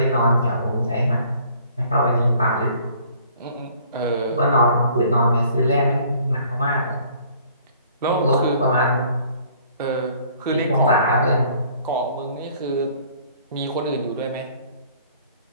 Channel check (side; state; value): both; inverted; correlation -0.57